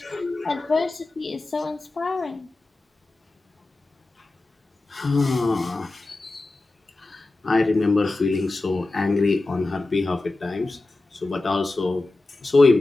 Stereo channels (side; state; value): right; quieter; 3.1 dB